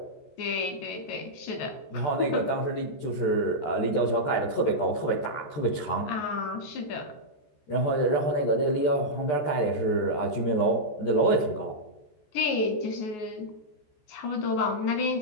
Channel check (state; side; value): late; right; 14 ms